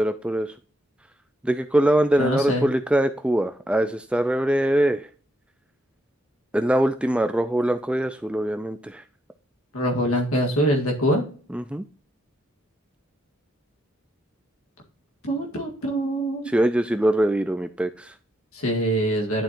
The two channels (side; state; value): both; normal; correlation 0.78